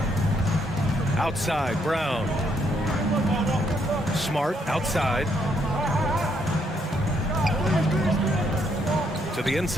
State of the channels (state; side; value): normal; both; correlation 0.73